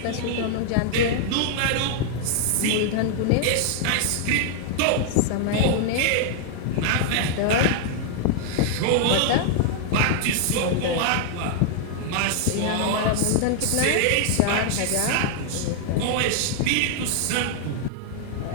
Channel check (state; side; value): different; both; correlation 0.00